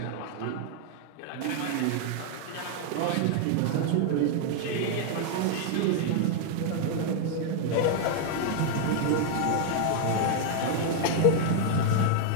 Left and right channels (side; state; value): both; different; correlation 0.00